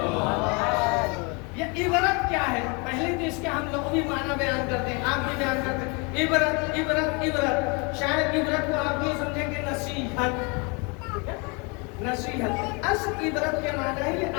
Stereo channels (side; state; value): right; quieter; 31.1 dB